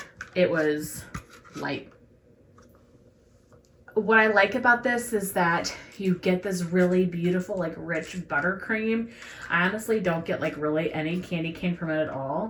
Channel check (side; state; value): both; identical; correlation 1.00